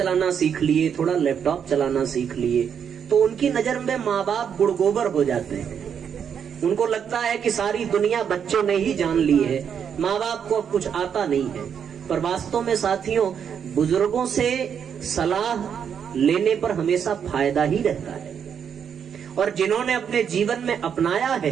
सीख लिए, थोड़ा लैपटॉप चलाना सीख लिए, तो उनकी नजर में माँ बाप गुड़ गोबर हो जाते हैं। उनको लगता है कि सारी दुनिया बच्चों ने ही जान ली है, माँ बाप को अब कुछ आता नहीं है। पर वास्तव में साथियों, बुजुर्गों से सलाह लेने पर हमेशा फायदा ही रहता है, और जिन्होंने अपने जीवन में अपनाया है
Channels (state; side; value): quieter; left; 7.7 dB